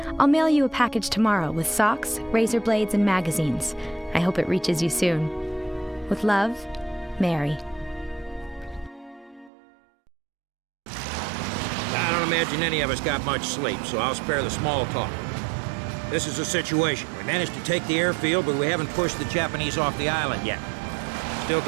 I'll mail you a package tomorrow with socks, razor blades, and magazines. I hope it reaches you soon. With love, Mary. I don't imagine any of us got much sleep, so I'll spare the small talk. This is the situation. We managed to take the airfield, but we haven't pushed the Japanese off the island yet. Still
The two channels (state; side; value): drops out; left; at 9.5 s